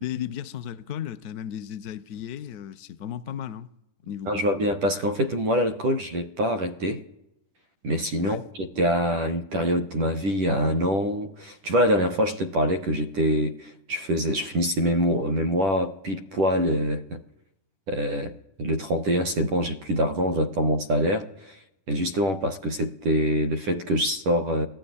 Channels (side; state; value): left; late; 10 ms